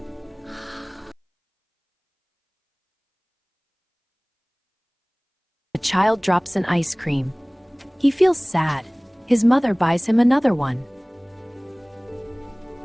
A child drops an ice cream. He feels sad. His mother buys him another one.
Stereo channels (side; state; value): both; identical; correlation 1.00